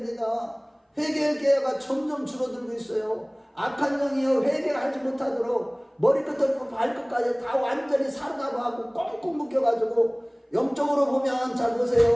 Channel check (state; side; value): identical; both; correlation 1.00